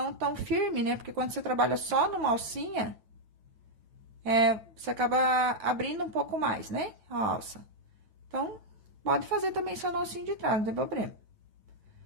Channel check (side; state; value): left; late; 9.0 ms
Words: tão firme, né? Porque quando você trabalha só numa alcinha, você acaba abrindo um pouco mais, né? A alça. Então, pode fazer também só na alcinha de trás, não tem problema.